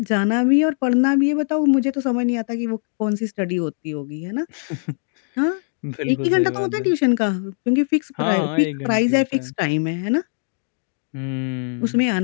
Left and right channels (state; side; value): silent; right; 61 dB below the other